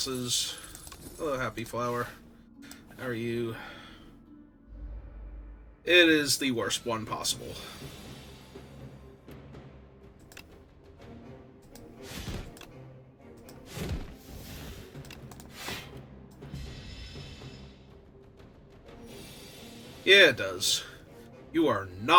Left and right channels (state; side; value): identical; both; correlation 1.00